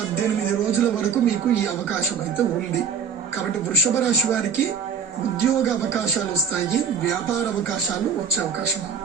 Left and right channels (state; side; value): quieter; left; 6.6 dB